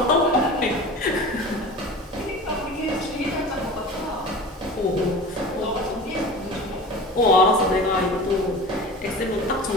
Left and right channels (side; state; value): both; normal; correlation 0.36